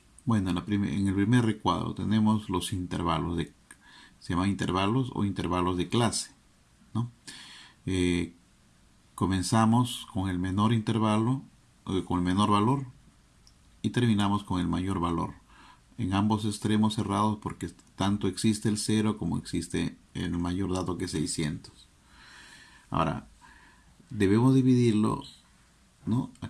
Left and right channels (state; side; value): identical; both; correlation 1.00